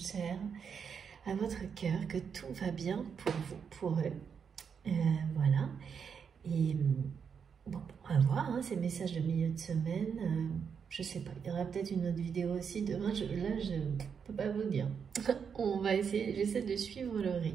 à votre cœur, que tout va bien pour vous, pour eux. Voilà. Et bon, on va voir ces messages de milieu de semaine. Je sais pas, il y aura peut-être une autre vidéo aussi demain. Là, je ne peux pas vous dire. On va essayer, j'essaie de suivre le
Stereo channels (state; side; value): quieter; left; 6.7 dB